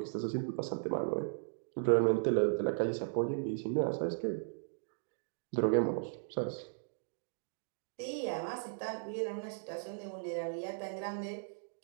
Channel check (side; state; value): left; silent; digital silence